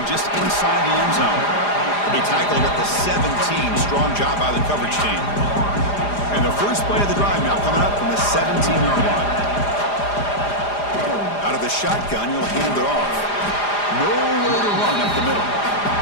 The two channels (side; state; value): right; late; 4.9 ms